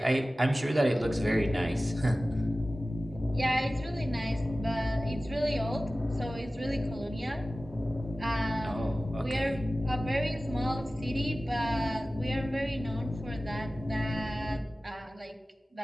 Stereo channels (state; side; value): normal; both; correlation 0.96